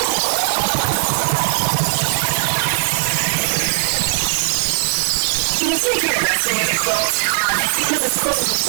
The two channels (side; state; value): left; silent; digital silence